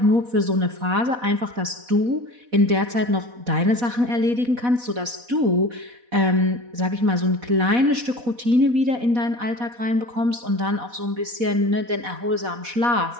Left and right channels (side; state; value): left; late; 4.1 ms